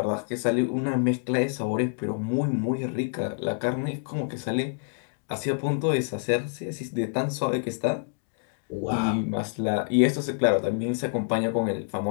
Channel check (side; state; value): right; silent; digital silence